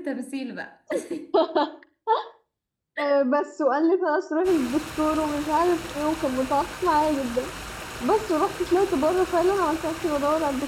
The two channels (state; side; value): identical; both; correlation 1.00